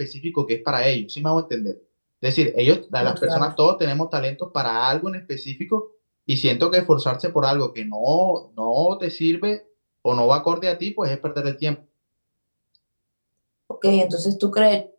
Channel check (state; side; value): inverted; both; correlation -1.00